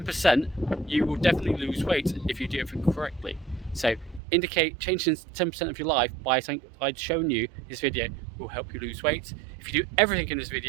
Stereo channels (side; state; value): left; drops out; at 4.2 s